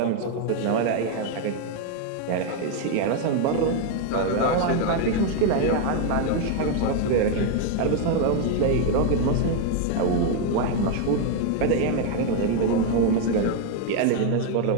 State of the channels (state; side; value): different; both; correlation 0.01